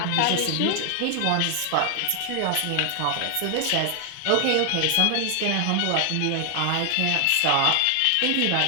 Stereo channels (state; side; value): different; both; correlation 0.00